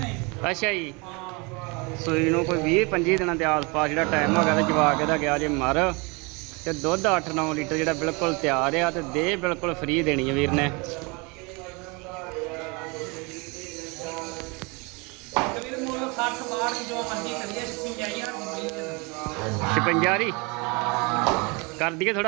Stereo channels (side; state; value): left; quieter; 29.0 dB